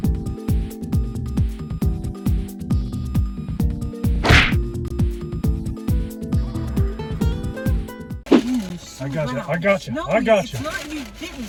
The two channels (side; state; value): both; identical; correlation 1.00